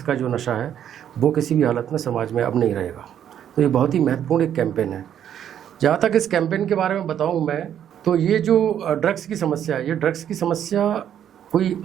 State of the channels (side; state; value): left; quieter; 9.8 dB